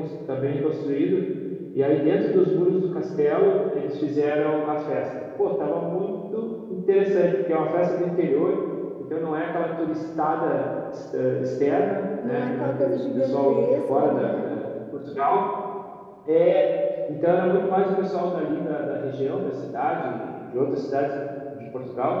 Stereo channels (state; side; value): identical; both; correlation 1.00